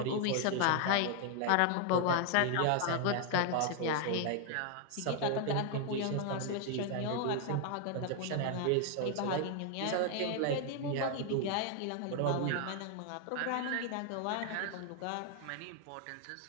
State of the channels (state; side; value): different; both; correlation 0.00